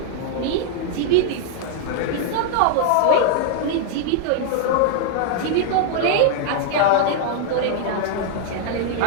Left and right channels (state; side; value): different; both; correlation 0.00